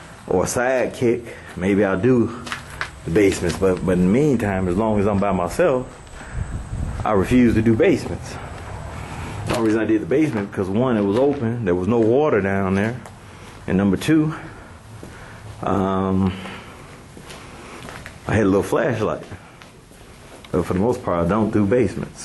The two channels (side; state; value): both; identical; correlation 1.00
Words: a sidekick, maybe I'll do the basements. But in the meantime, as long as I'm by myself, I refuse to do basements. The only reason I did the basement because one, it was open, there was no water down there, and number two, I had a little flashlight. But for the most part, I don't do